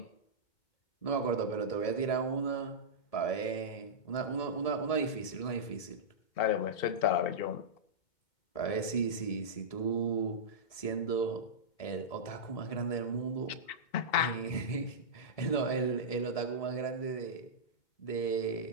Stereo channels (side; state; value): right; late; 1.7 ms